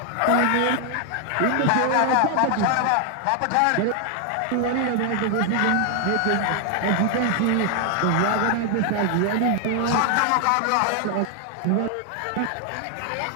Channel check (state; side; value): different; both; correlation 0.00